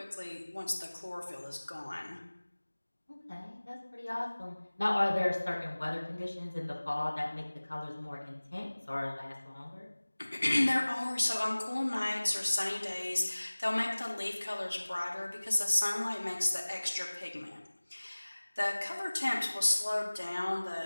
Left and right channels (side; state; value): both; inverted; correlation -1.00